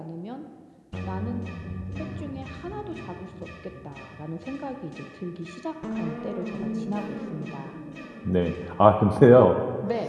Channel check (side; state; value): both; identical; correlation 1.00